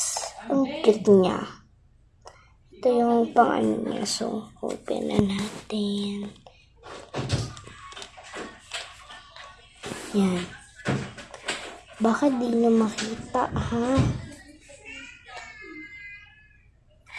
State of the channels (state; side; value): identical; both; correlation 1.00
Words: Ang cute niya. Ito yung pang-ano niya. So, open na natin. Yan. Baka di nyo makita, ha?